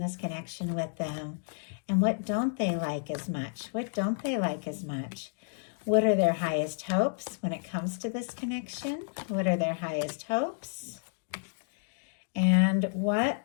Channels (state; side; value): silent; right; digital silence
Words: this connection with them? And what don't they like as much? What don't they like as much? What are their highest hopes when it comes to this connection? What are their highest hopes? And what